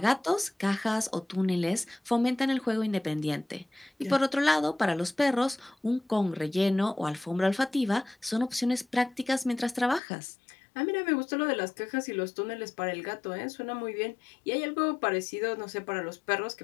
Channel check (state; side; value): drops out; right; at 10.0 s